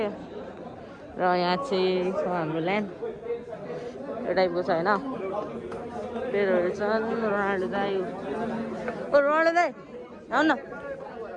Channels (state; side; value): identical; both; correlation 1.00